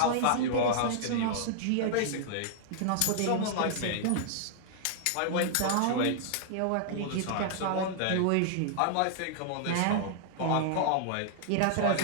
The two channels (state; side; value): different; both; correlation -0.01